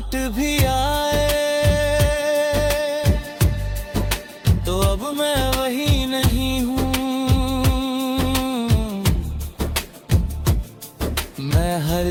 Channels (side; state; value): both; identical; correlation 1.00